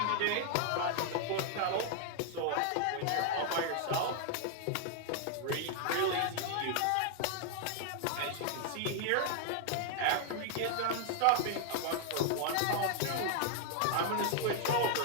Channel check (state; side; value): different; both; correlation 0.00